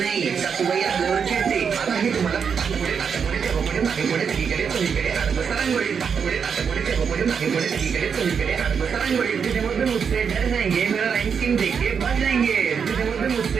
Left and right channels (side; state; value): left; quieter; 6.6 dB